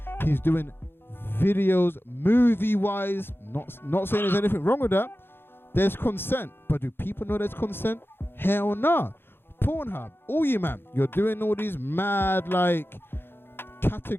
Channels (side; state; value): right; late; 0.10 ms